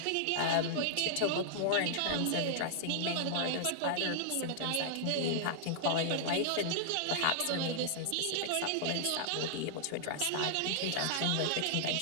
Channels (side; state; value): both; different; correlation -0.01